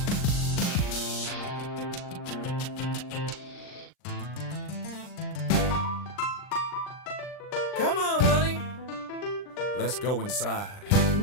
Come on, honey. Let's go inside.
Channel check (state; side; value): late; right; 39 ms